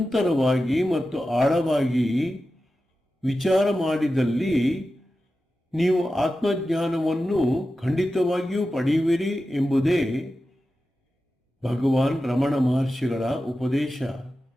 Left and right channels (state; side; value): normal; both; correlation 0.93